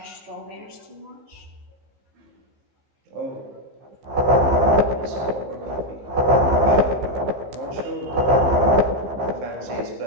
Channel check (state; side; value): late; left; 15 ms